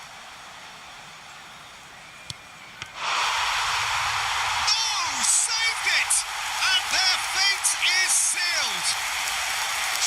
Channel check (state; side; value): identical; both; correlation 1.00